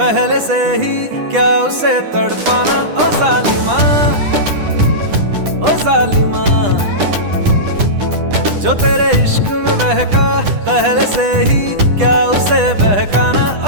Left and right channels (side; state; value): left; late; 10 ms